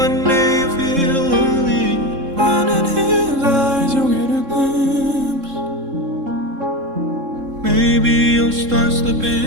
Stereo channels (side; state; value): left; late; 3.7 ms